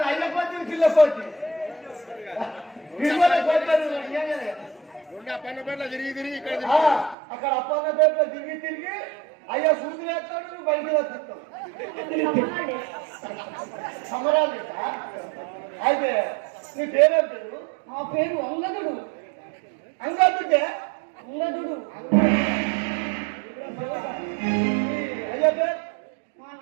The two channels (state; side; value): drops out; left; at 7.2 s